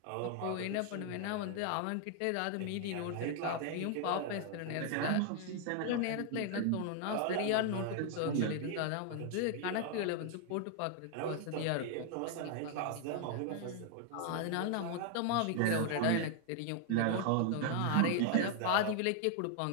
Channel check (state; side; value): different; both; correlation 0.00